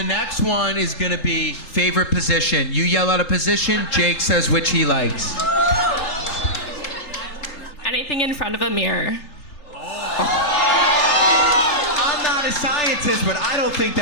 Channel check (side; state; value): right; late; 3.7 ms